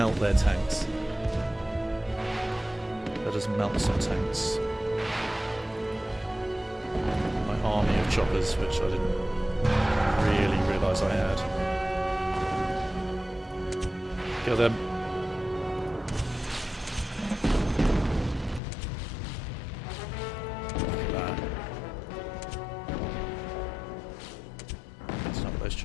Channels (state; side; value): drops out; right; at 18.6 s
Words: their tanks. Let us melt some tanks. My army of choppers, which I didn't really realise I had. Kill them. Those